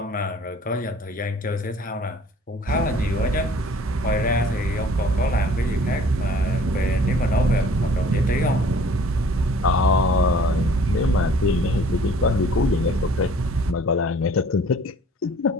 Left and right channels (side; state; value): both; normal; correlation 0.53